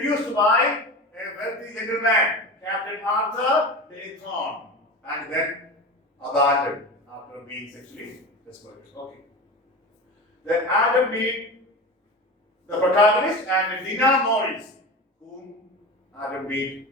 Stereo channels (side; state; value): both; normal; correlation 0.28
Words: by a wealthy gentleman, Captain Arthur Dayton, and then abandoned after being sexually desperate. Okay. Then Adam Mead, the protagonist, and Dina Morris, whom Adam Mead